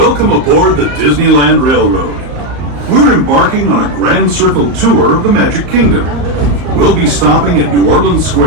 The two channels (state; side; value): late; left; 34 ms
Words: aboard the Disneyland Railroad. We're embarking on a grand circle tour of the Magic Kingdom. We'll be stopping at New Orleans